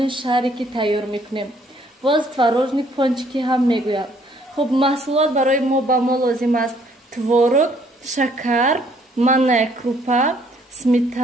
шарики тайёр мекунем. боз творожни пончики ҳам мегӯяд. хуб, маҳсулот барои мо ба мо лозим аст: творог, шакар, манная крупа,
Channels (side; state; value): both; normal; correlation 0.64